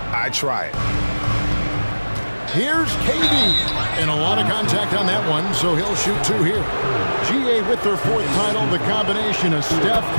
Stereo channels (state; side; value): inverted; both; correlation -1.00